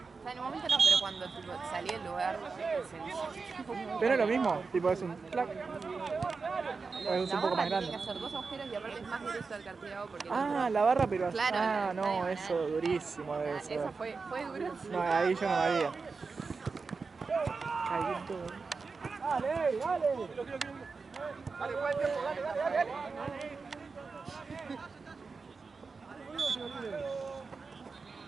O sea, en un momento no, pero cuando tipo, salí del lugar se Pero es lo mismo, tipo es un clac. O es un poco más grande. Tiene que hacer 2 agujeros y aparte es más directo al cartílago porque... La barra, pero así. Claro, No, eso durísimo debe ser. Eso fue duro. No, ahí yo no me haría. Caí todo. Dale.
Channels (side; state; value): left; quieter; 4.6 dB